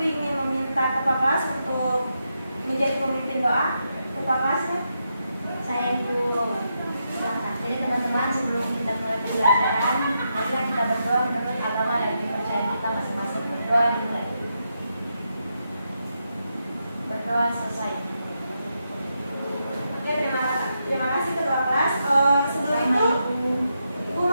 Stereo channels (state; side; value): inverted; both; correlation -0.84